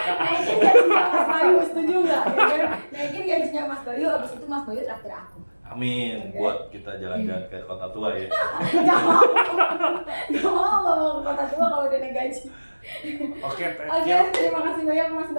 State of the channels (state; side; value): inverted; both; correlation -1.00